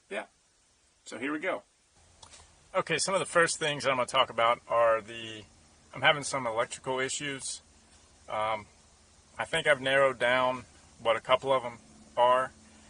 so here we go. Okay, some of the first things I'm going to talk about are I'm having some electrical issues. I think I've narrowed down what a couple of them are,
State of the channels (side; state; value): both; identical; correlation 1.00